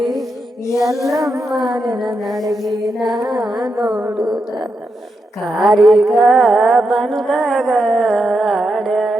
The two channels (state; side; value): normal; both; correlation 0.85